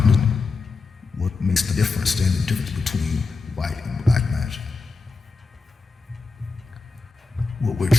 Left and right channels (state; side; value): quieter; right; 4.0 dB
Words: What makes the difference, stand the difference between white and black magic? What we're